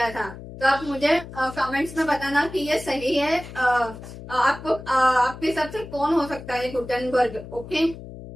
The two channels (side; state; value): left; noise; hum, 13 dB below the sound